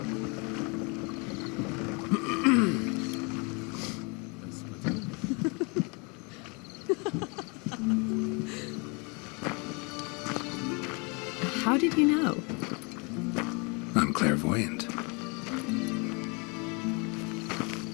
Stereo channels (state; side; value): quieter; right; 31.1 dB